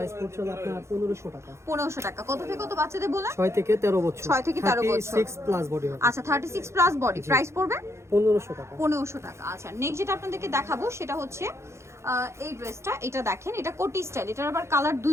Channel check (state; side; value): late; left; 0.13 ms